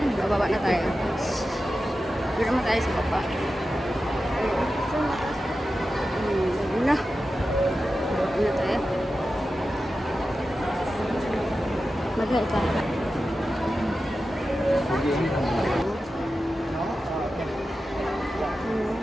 bababa na tayo. Hindi naman tayo sa baba. Una. Bababa na tayo. Magay ka.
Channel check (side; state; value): both; normal; correlation 0.92